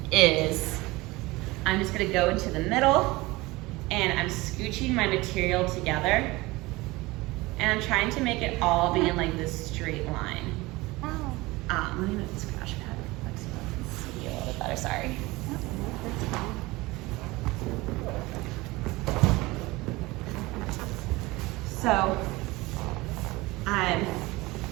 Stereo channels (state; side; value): quieter; left; 21.3 dB